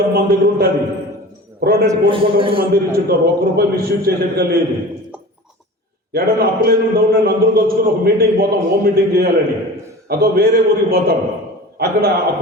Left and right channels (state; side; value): normal; both; correlation 0.36